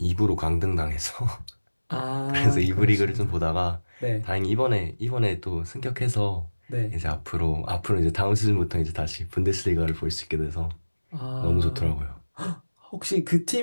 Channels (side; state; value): both; inverted; correlation -1.00